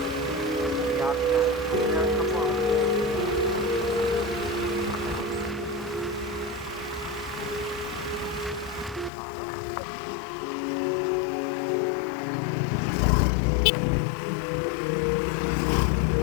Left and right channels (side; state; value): right; drops out; at 9.1 s